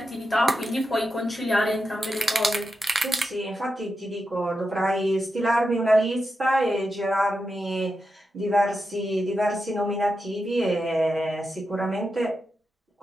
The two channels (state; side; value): normal; both; correlation 0.88